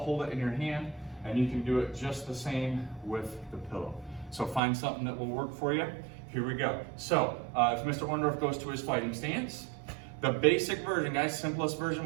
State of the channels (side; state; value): left; drops out; at 4.6 s